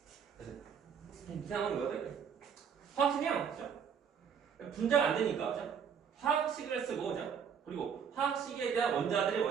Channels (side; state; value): left; quieter; 7.3 dB